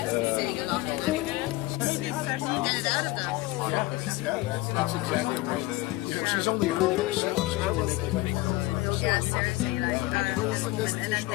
saying a lot, and get it out of them. That's exactly right. She's only earning herself. Yeah, seriously, like, and then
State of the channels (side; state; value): right; quieter; 19.1 dB